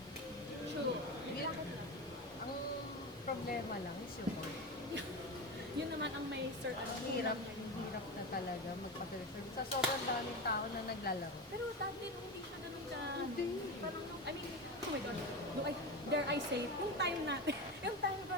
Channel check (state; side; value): normal; both; correlation 0.21